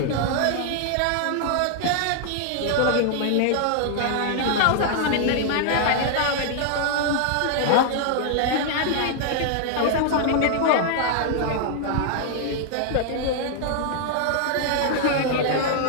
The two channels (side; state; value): both; different; correlation -0.01